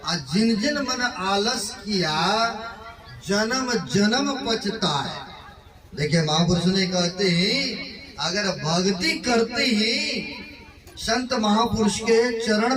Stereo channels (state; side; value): identical; both; correlation 1.00